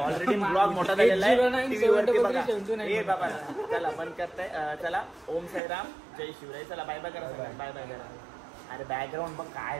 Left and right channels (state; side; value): drops out; left; at 5.6 s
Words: ऑलरेडी ब्लॉग मोठा झालेला आहे, टीव्ही वरती बघा. ए बाबा चला बंद करताय. चला ओम साईराम जय शिवराय. चला बाय बाय करा, बाय बाय करा. अरे बॅकग्राऊंड बघ काय,